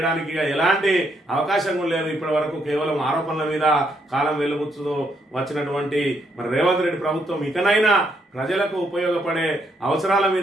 ఎలాంటి అవకాశం లేదు. ఇప్పటి వరకు కేవలం ఆరోపణల మీద కాలం వెలుబుచ్చుతూ వచ్చినటువంటి మరి రేవంత్ రెడ్డి ప్రభుత్వం ఇకనైనా ప్రజలకు ఉపయోగపడే అవసరాల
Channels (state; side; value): normal; both; correlation 0.74